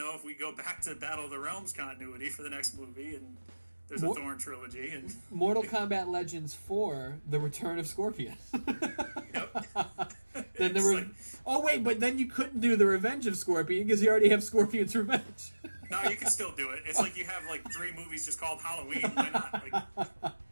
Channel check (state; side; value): inverted; both; correlation -1.00